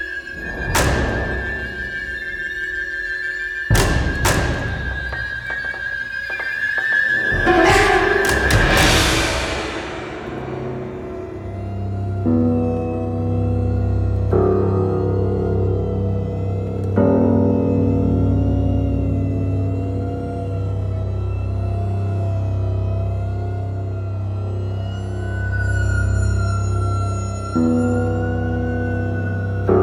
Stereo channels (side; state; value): both; identical; correlation 1.00